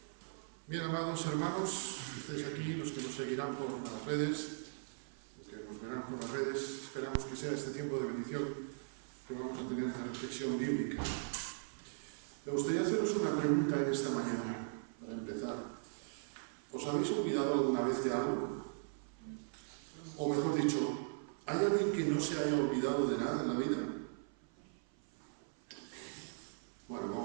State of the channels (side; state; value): left; silent; 52 dB below the other